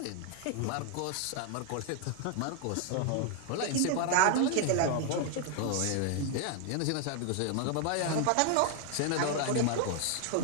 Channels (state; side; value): different; both; correlation 0.01